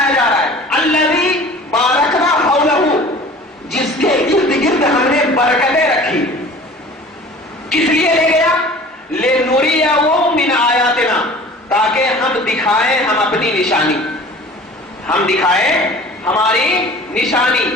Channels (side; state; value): both; normal; correlation 0.44